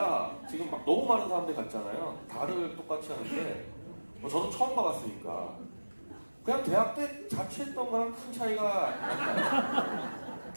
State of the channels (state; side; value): inverted; both; correlation -1.00